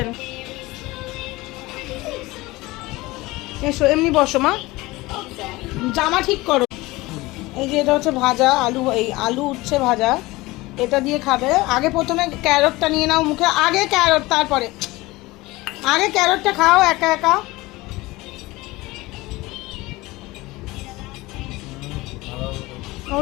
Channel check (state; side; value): quieter; right; 20.6 dB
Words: এসো এমনি বসো মা, জামা ঠিক করো। এই যে এটা হচ্ছে ভাজা আলু, এই আলু উচ্ছে ভাজা, এটা দিয়ে খাবে। আগে প্রথমে ক্যারটটা নিয়ে নাও মুখে, আগে ক্যারট, তারপরে আগে ক্যারটটা খাও একা একা। ও